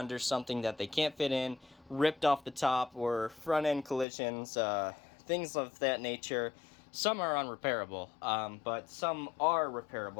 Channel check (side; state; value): right; drops out; at 4.0 s